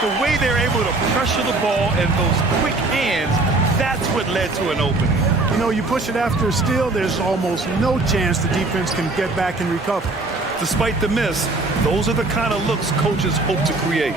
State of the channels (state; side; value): quieter; left; 3.2 dB